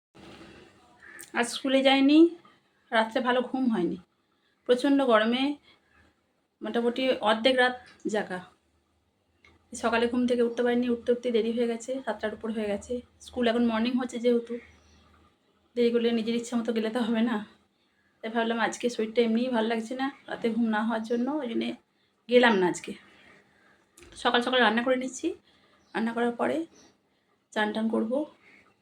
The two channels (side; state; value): both; identical; correlation 1.00